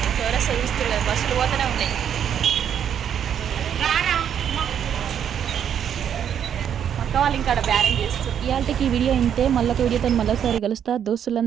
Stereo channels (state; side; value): quieter; left; 8.9 dB